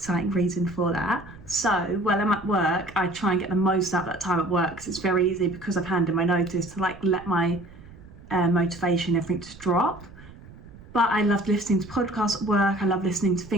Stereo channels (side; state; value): right; noise; rumble, 19 dB below the sound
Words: reason for that. So while I'm at work, I try and get the most out of that time at work, because it's very easy, because I've handed my notice, to like let my motivation, everything to drop. But I love listening to podcasts at work. I love listening to